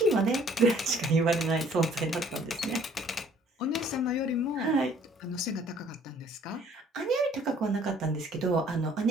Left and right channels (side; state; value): both; normal; correlation 0.57